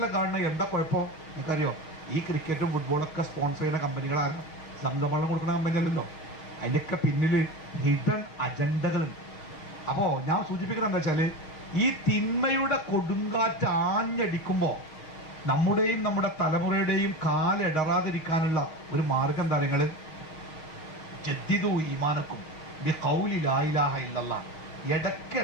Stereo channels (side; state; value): right; late; 6.3 ms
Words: കാണുന്നത്, എന്താ കുഴപ്പം നിങ്ങൾക്കറിയോ? ഈ ക്രിക്കറ്റും ഫുട്ബോളൊക്കെ സ്പോൺസർ ചെയ്യുന്ന കമ്പനികളാണ്, സംഘവെള്ളം കൊടുക്കുന്ന കമ്പനി അല്ലല്ലോ. അതിൻ്റെയൊക്കെ പിന്നിൽ ഹിഡൻ അജണ്ടകളുണ്ട്. അപ്പോൾ ഞാൻ സൂചിപ്പിക്കുന്നത് എന്താ വെച്ചാൽ, ഈ തിന്മയുടെ കൊടുങ്കാറ്റ് ആഞ്ഞടിക്കുമ്പോൾ നമ്മുടെയും നമ്മുടെ തലമുറയുടെയും കാലിടറാതിരിക്കാനുള്ള ഒരു മാർഗം എന്താ നിങ്ങൾ? ജദ്ദിദു ഈമാനക്കും ബി ഖൗലി ലാ ഇലാഹ ഇല്ലല്ലാഹ്.